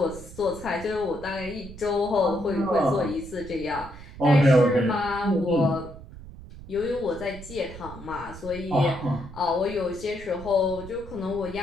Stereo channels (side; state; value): right; noise; rumble, 15 dB below the sound